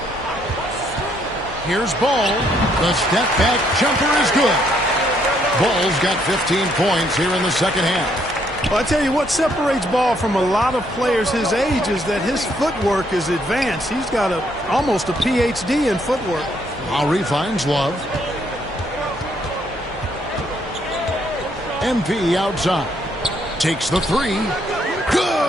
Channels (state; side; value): normal; both; correlation 0.71